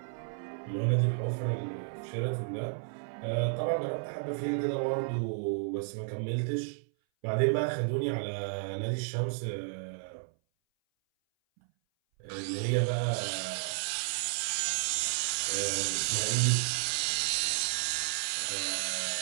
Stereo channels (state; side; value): silent; left; 56 dB below the other